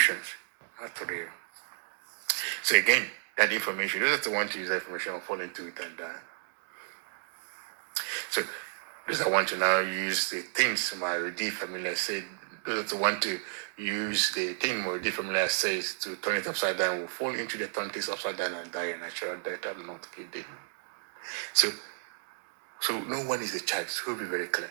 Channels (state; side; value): silent; left; digital silence